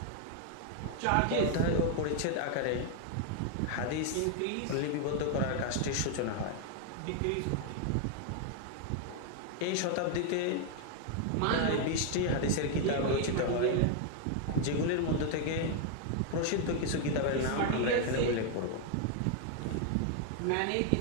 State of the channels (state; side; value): different; both; correlation 0.00